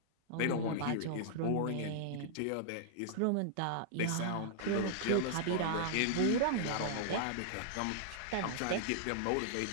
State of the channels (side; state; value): both; different; correlation -0.01